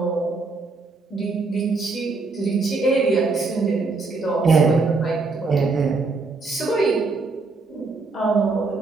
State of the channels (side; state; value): left; quieter; 3.9 dB